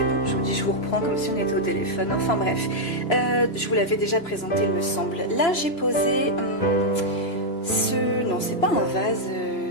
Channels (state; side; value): late; right; 3.0 ms